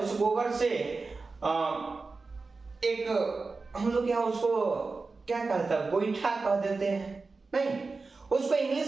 गोबर से एक हम लोग यहाँ उसको क्या कहते हैं, गोईठा कह देते हैं, नहीं उसको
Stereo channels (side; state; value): left; quieter; 4.0 dB